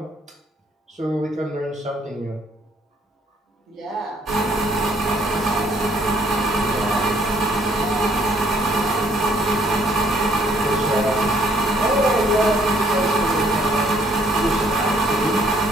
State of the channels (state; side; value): normal; both; correlation 0.64